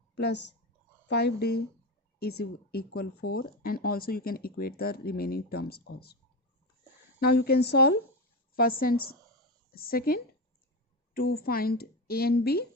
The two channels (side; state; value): both; normal; correlation 0.17